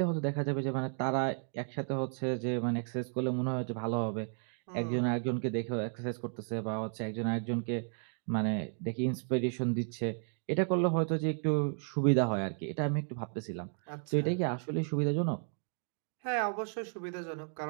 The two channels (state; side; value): silent; left; 55 dB below the other